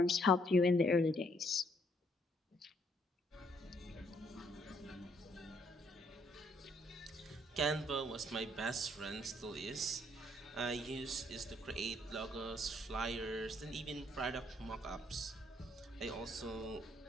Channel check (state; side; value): normal; both; correlation 0.69